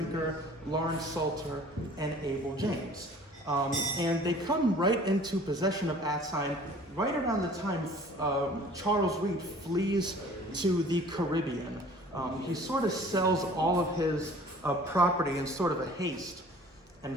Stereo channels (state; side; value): normal; both; correlation 0.49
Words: Lawrence Salter, and Abel James. And they come right into possession of Atsion right around the time Charles Reed flees to the Caribbean. He sort of sells all of his property in sort of a haste and